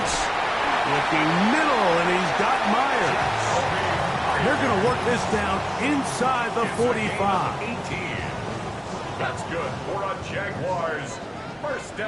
Looking middle, and he's got Myers. They're going to work this down inside the 45. 18. That's good for a Jaguars. First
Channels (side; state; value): both; identical; correlation 1.00